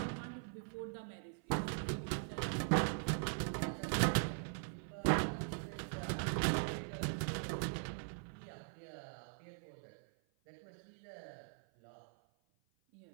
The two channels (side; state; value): left; silent; 50 dB below the other